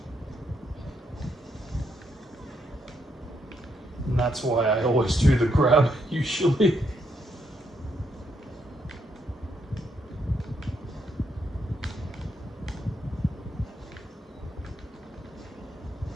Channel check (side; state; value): both; normal; correlation 0.77